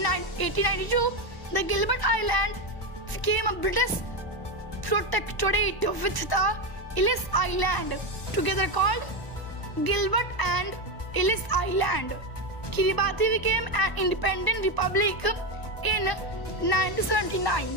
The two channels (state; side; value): late; right; 1.0 ms